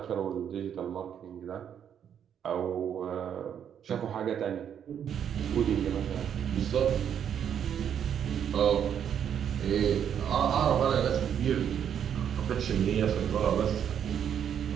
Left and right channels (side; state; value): left; quieter; 8.7 dB